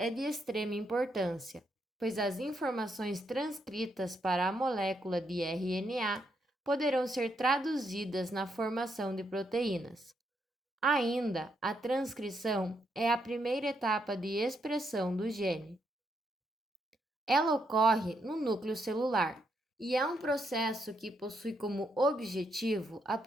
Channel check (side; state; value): both; normal; correlation 0.78